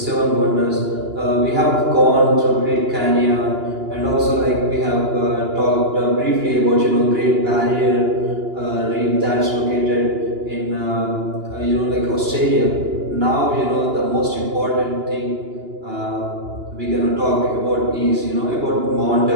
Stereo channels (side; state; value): left; late; 2.9 ms